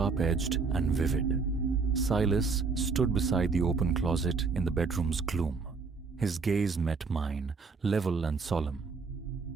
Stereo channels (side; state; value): left; quieter; 4.7 dB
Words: and vivid. Silas stood beside the open closet in the bedroom's gloom. His gaze met mine, level and solemn.